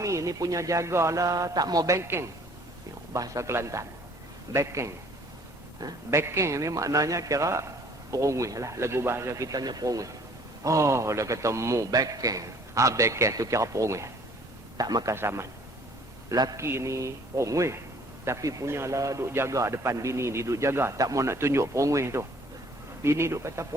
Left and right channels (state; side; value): normal; both; correlation 0.56